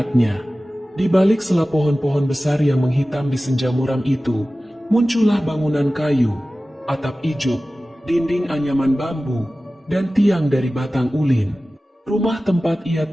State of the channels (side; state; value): both; normal; correlation 0.96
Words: Di balik sela pohon-pohon besar yang menghitam di senja muram itu, muncullah bangunan kayu. atap ijuk, dinding anyaman bambu, dan tiang dari batang ulin. Rumah tempat ia